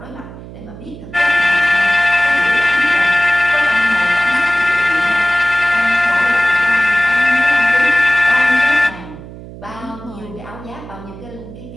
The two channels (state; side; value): noise; right; hum, 15 dB below the sound